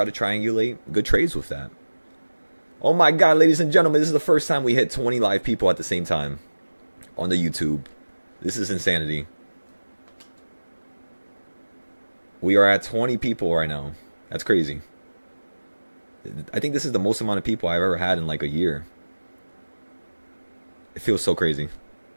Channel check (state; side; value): inverted; both; correlation -1.00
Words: to triangulate good trades with that. Oh my God, ladies and gentlemen, this is the first time we hit 20 live people at the same time on the YouTube. This is insanity. We are at 20 people right now. That's crazy. I think this is the most amount of people I've ever had in like a year. It feels so crazy.